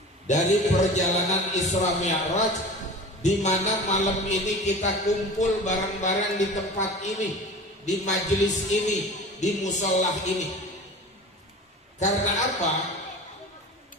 dari perjalanan Isra Mi'raj, di mana malam ini kita kumpul bareng-bareng di tempat ini, di majelis ini, di musolah ini. Karena apa?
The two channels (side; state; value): both; normal; correlation 0.36